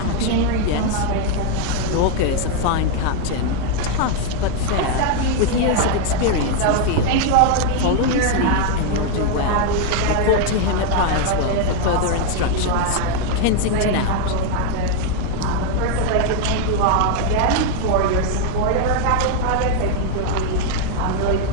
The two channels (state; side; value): different; both; correlation 0.00